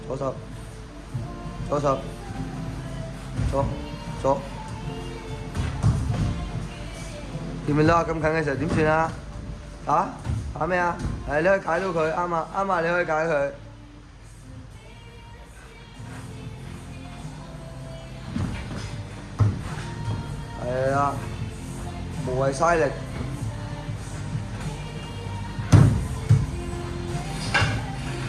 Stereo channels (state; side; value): identical; both; correlation 1.00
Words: 左手，左手，左，掂唔掂啊？咁近嘅時候點算啊？啊？打咩啊？係你可以解到佢，啱啊，啱啊，你可以解佢。係啊，無謂嘥力。